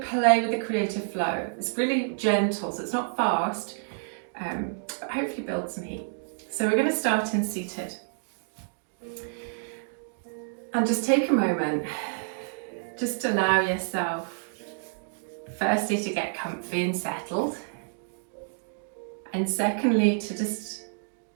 play with the creative flow. It's really gentle, so it's not fast, but hopefully build some heat. So we're going to start in seated. And just take a moment, just allow yourself firstly to get comfy and settled, and secondly to just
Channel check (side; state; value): left; silent; digital silence